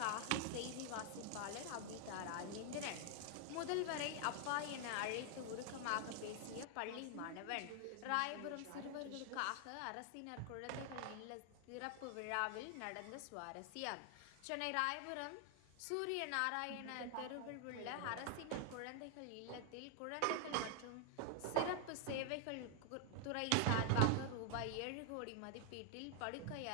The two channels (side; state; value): both; different; correlation 0.00